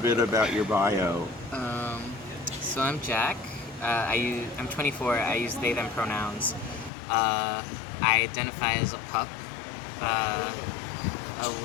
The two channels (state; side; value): drops out; right; at 6.9 s